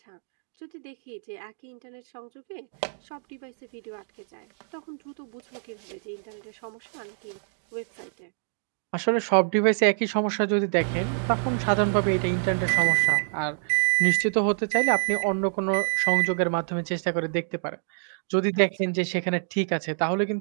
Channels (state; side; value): silent; left; digital silence